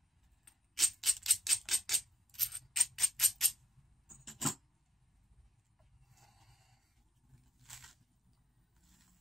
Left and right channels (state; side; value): normal; both; correlation 0.81